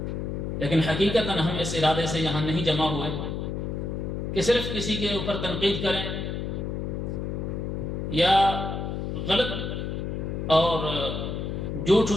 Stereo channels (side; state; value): left; noise; hum, 3 dB below the sound